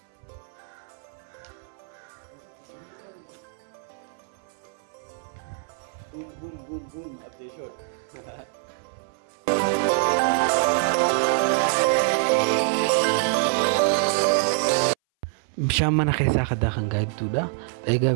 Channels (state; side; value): silent; left; 59 dB below the other